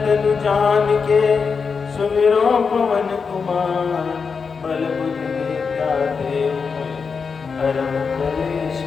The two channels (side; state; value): right; quieter; 5.4 dB